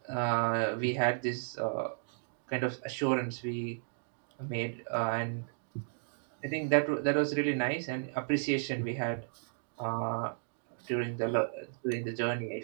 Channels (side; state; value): left; silent; digital silence